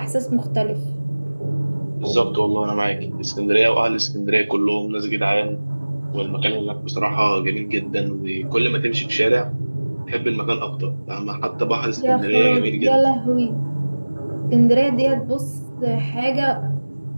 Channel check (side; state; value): both; inverted; correlation -1.00